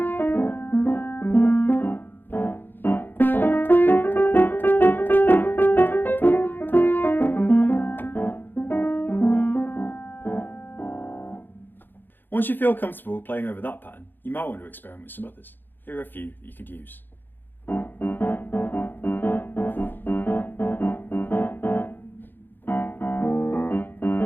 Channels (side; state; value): right; late; 0.094 ms